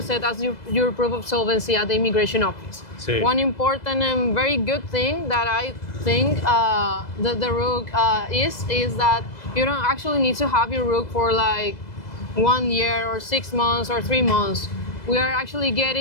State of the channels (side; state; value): right; late; 2.0 ms